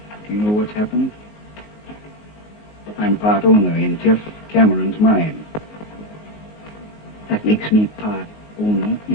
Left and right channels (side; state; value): right; late; 19 ms